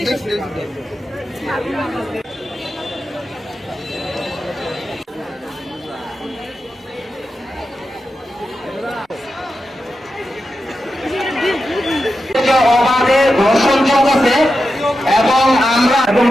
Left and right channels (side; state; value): both; normal; correlation 0.90